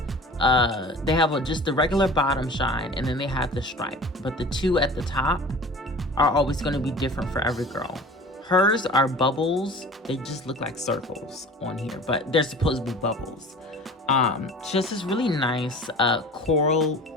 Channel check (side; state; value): both; normal; correlation 0.41